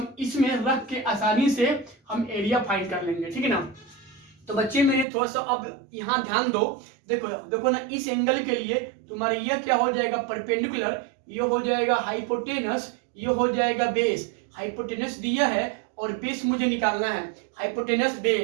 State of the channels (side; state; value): left; drops out; at 5.1 s